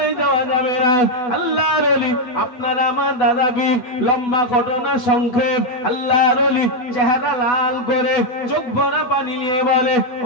যাওয়া যাবে না। আল্লাহর ওলি আপনার আমার দাদা পীর, লম্বা ঘটনা সংক্ষেপ, আল্লাহর ওলি চেহারা লাল করে চোখ ভরা পানি নিয়ে বলে,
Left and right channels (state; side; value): late; right; 8.1 ms